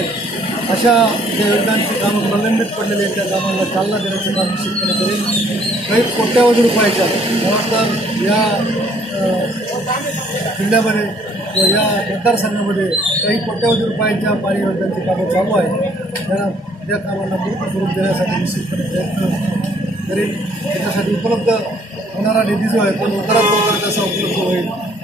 अशा ज्या योजनांची कामं प्रलंबित पडलेली आहेत त्या कामांना चालना देण्याचं काम निश्चितपणे करेल. काही कोट्यावधी रुपयाच्या तर या जिल्ह्यामध्ये व या मतदारसंघामध्ये काही कोट्यावधी रुपयांच्या पाणी योजनांची कामं चालू आहेत. त्या कामांना पूर्ण स्वरूप देण्यासाठी निश्चितपणे प्रयत्न करेल. त्याच्यासाठी उपलब्ध होणारा निधी जो आहे तो लवकरात लवकर कसा उपलब्ध होईल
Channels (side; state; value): both; normal; correlation 0.62